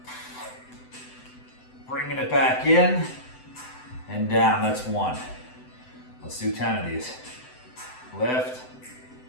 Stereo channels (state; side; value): late; right; 7.9 ms